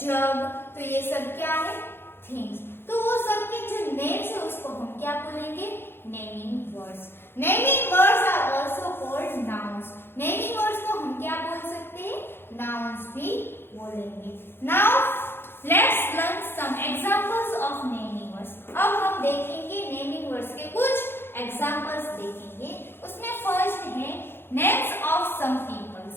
jug. तो ये सब क्या है? Things. तो वो सब के जो names है उसको हम क्या बोलेंगे? Naming words. Naming words are also called nouns. Naming words को हम क्या बोल सकते हैं? नाउन्स भी बोलेंगे. Now let's learn some examples of naming words. अब हम देखेंगे नेमिंग वर्ड्स के कुछ एग्जांपल्स देखेंगे. उसमें फर्स्ट है names of some peoples.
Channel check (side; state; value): right; late; 0.11 ms